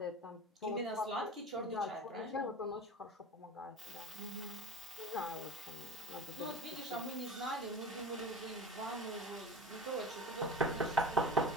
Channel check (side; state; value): both; normal; correlation 0.35